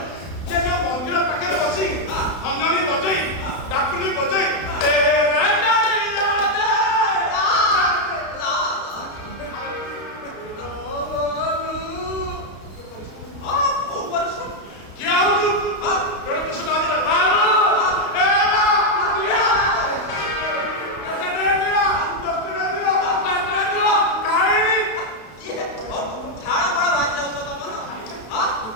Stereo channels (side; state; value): right; late; 32 ms